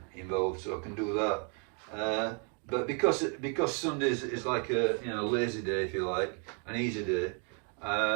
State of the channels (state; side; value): quieter; left; 39.9 dB